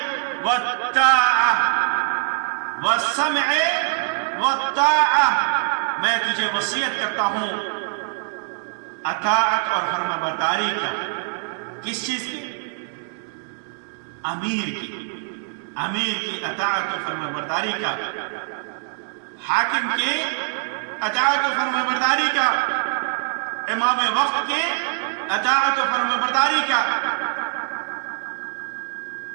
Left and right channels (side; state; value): left; silent; digital silence